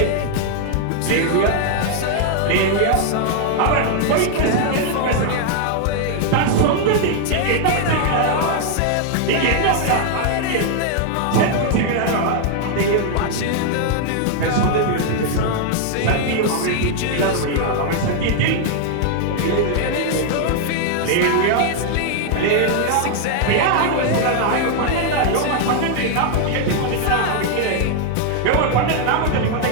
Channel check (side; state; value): both; different; correlation 0.00